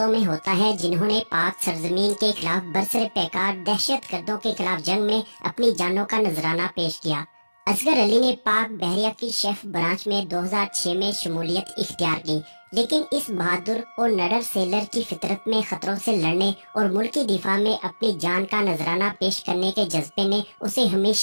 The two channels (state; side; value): inverted; both; correlation -1.00